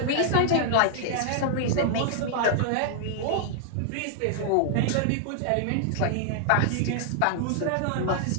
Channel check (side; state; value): both; different; correlation -0.01